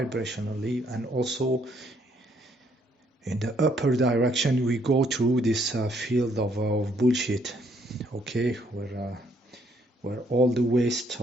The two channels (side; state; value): both; normal; correlation 0.69